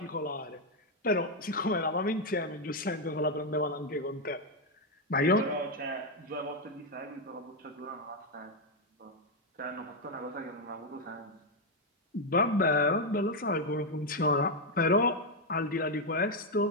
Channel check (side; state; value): both; normal; correlation 0.03